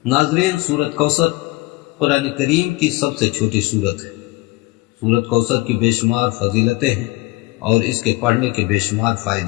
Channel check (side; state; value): right; quieter; 21.6 dB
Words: ناظرین، سورۃ کوثر قرآن کریم کی سب سے چھوٹی سورت ہے۔ سورۃ کوثر کی بے شمار فضیلتیں ہیں اور اس کے پڑھنے کے بے شمار